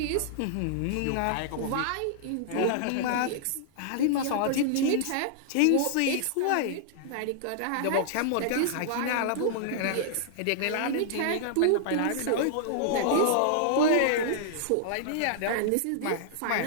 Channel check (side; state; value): both; different; correlation -0.01